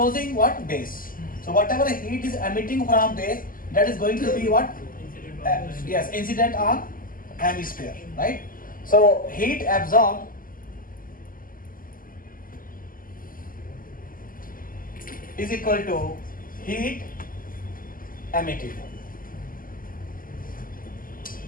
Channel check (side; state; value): right; late; 0.41 ms